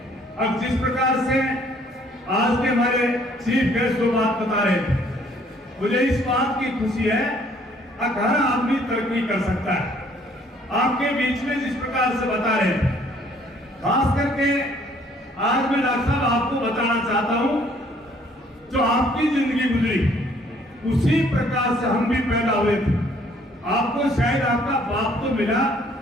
अब जिस प्रकार से आज के हमारे चीफ गेस्ट जो बात बता रहे थे, मुझे इस बात की खुशी है हर आदमी तरक्की कर सकता है। आपके बीच में जिस प्रकार से बता रहे थे, खास करके आज मैं डॉक्टर साहब आपको बताना चाहता हूं, जो आपकी जिंदगी गुजरी उसी प्रकार से हम भी पैदा हुए थे। आपको शायद आपका बाप तो मिला,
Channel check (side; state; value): both; normal; correlation 0.61